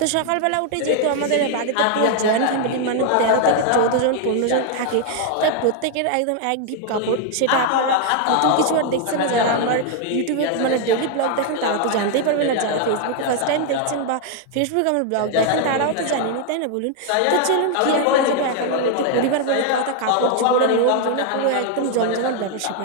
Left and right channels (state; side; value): different; both; correlation 0.00